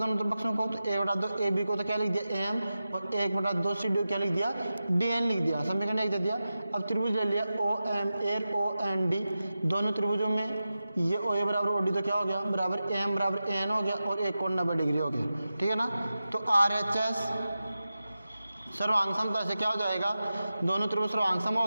पक्षों को। तो 1/2 ए बी को तो क्या लिख दिया, ए एम, और 1/2 सी डी को क्या लिख दिया, डी एन लिख दिया, समीकरण 1 दे दिया। अब त्रिभुज ले लिया O M A O N D, दोनों त्रिभुजों में ये ओ ए बराबर ओ डी तो क्या हो गया, बराबर ए एम बराबर ए एन हो गया, और एक कोण 90 डिग्री हो गया। ठीक है ना, तो आर एच एस सर्वांग समता से क्या हो जाएगा, दोनों त्रिभुज सर्वांग सम हो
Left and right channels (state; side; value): inverted; both; correlation -0.93